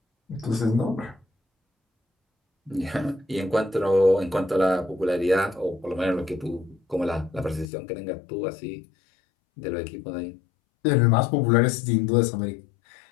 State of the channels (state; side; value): drops out; right; at 7.7 s